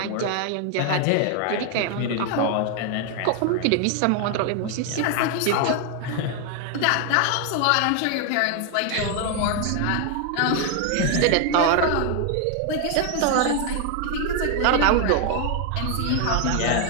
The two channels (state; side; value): different; both; correlation 0.00